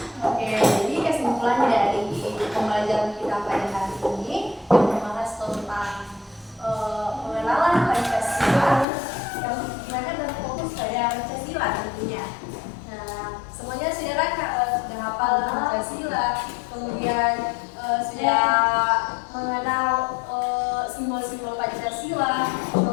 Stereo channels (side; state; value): right; drops out; at 8.8 s